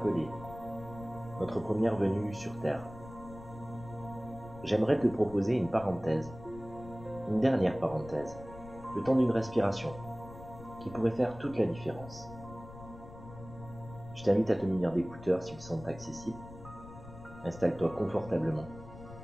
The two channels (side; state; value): left; noise; rumble, 16 dB below the sound